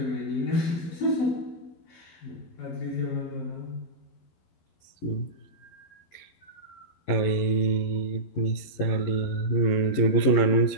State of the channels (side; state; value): right; late; 11 ms